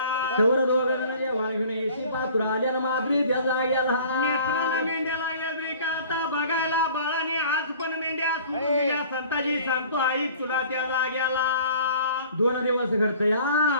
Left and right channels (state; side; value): inverted; both; correlation -0.48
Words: तेवढं दोघं जेव्हा घेऊन येशी पात्र आल्या न मात्री त्या जाग्याला. नेत्राला मेंढ्या लागल्या ब्रेका आता बघायला. बाळाने आज पण मेंढ्या सोडून दिल्या. संताजी सांगतो आई तुला त्या जाग्याला. 2 दिवस घडत या